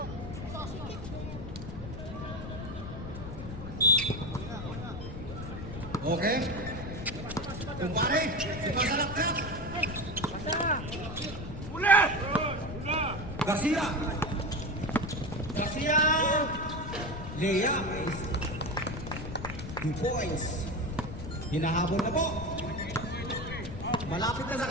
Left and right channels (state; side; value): noise; left; rumble, 8 dB below the sound